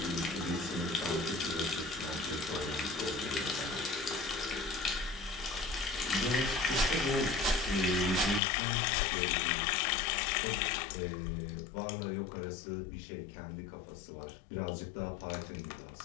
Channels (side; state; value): right; drops out; at 8.4 s